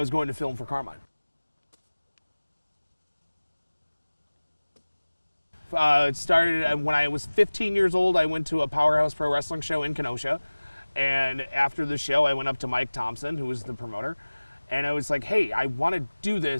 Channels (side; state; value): both; inverted; correlation -1.00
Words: going to film for Carmine. It started when I was 15 years old. I went to a Powerhouse Pro Wrestling show in Kenosha, and after the show I went up to Mike Thompson, who was the promoter, and I was like, hey, I want to do